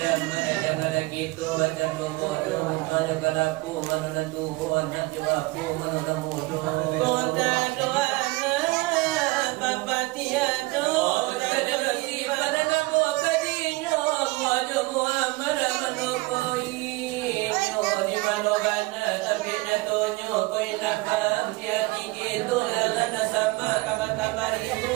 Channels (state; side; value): quieter; left; 22.8 dB